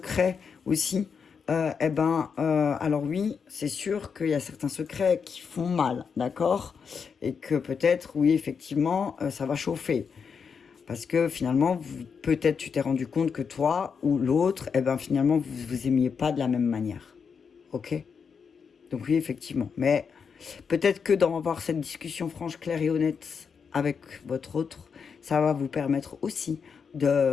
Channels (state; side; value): quieter; right; 6.2 dB